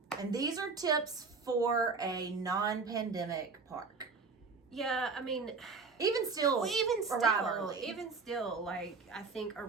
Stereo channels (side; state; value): left; quieter; 4.6 dB